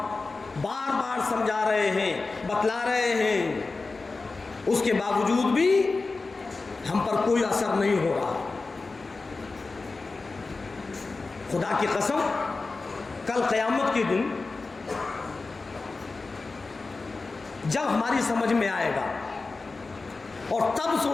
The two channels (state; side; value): quieter; right; 3.8 dB